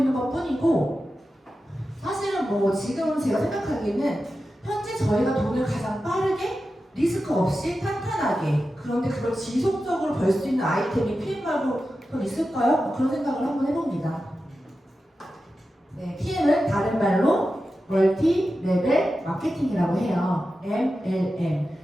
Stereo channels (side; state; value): both; normal; correlation 0.92